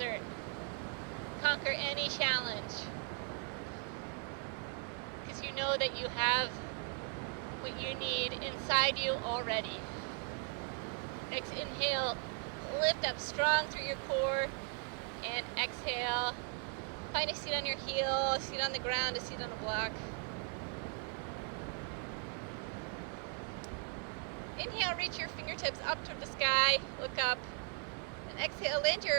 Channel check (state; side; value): quieter; left; 37.4 dB